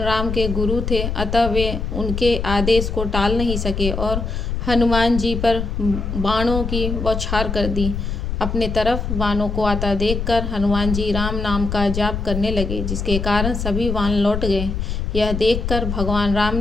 राम के गुरु थे, अतः वे उनके आदेश को टाल नहीं सके और हनुमान जी पर बाणों की बौछार कर दी। अपने तरफ वानों को आता देखकर हनुमान जी राम नाम का जाप करने लगे, जिसके कारण सभी वान लौट गए। यह देखकर भगवान राम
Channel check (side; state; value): left; noise; rumble, 3 dB below the sound